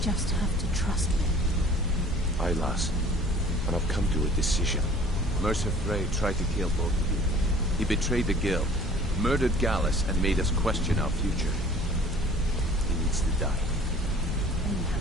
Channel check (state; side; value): normal; both; correlation 0.50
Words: have to trust me. Aye, lass. And I've come to a decision. Mercer Frey tried to kill both of you. He betrayed the Guild, murdered Gallus, and made us question our future. He needs to die. And you